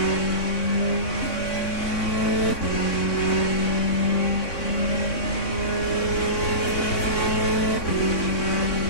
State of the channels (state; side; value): late; right; 3.6 ms